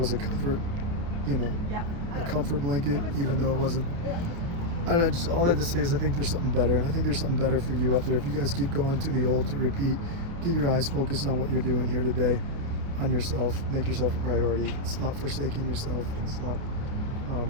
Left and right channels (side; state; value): left; late; 29 ms